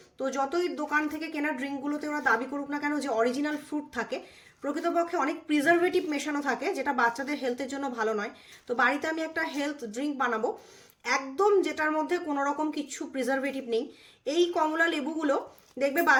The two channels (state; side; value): identical; both; correlation 1.00